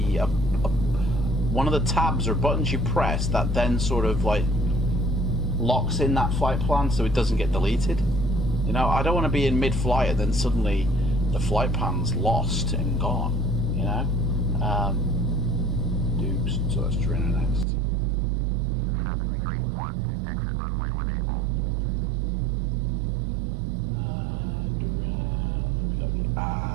one of the tabs or buttons you press that then sort of like locks in that flight plan so it doesn't get deleted. You know, I don't want to be in mid-flight and then suddenly the flight plan's lost and gone, you know. Dukes, so that's Trina next. 731, exit runway when able. We got the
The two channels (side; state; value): left; drops out; at 17.7 s